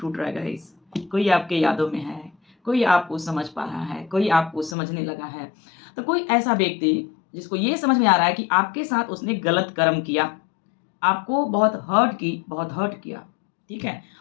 रहा है गाइस, कोई आपके यादों में है, कोई आपको समझ पा रहा है, कोई आपको समझने लगा है। तो कोई ऐसा व्यक्ति जिसको ये समझ में आ रहा है कि आपके साथ उसने गलत कर्म किया, आपको बहुत हर्ट किया, ठीक है?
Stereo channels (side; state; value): right; drops out; at 4.8 s